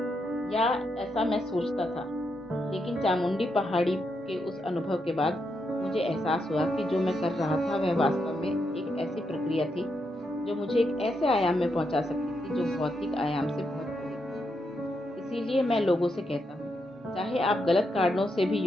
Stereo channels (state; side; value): normal; both; correlation 0.82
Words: या ऐसा मैं सोचता था, लेकिन चामुंडी पहाड़ी के उस अनुभव के बाद मुझे एहसास हुआ कि जो मैं कर रहा था वह वास्तव में एक ऐसी प्रक्रिया थी जो मुझे एक ऐसे आयाम में पहुंचा सकती थी जो भौतिक आयाम से बहुत बड़ी थी। इसीलिए मैं लोगों से कहता हूँ, चाहे आप गलत कारणों से भी